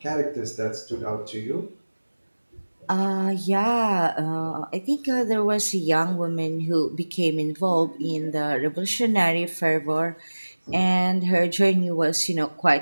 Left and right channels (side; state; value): both; inverted; correlation -1.00